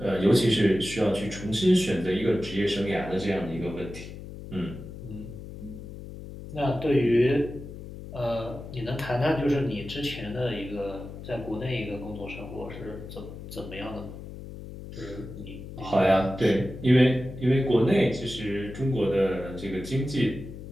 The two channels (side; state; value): left; noise; hum, 12 dB below the sound